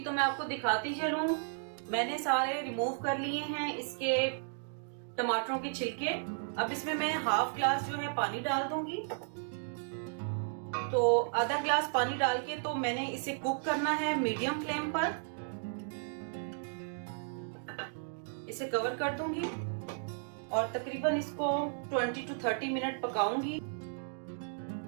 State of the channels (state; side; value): silent; left; digital silence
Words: तो मैं आपको दिखाती चलूं, मैंने सारे रिमूव कर लिए हैं इसके टमाटरों के छिलके। अब इसमें मैं हाफ ग्लास जो है पानी डाल दूंगी। तो आधा ग्लास पानी डाल के तो मैंने इसे कुक करना है मीडियम फ्लेम पर। इसे कवर कर दूंगी और तकरीबन इसको 20 to 30 मिनट पकाऊंगी।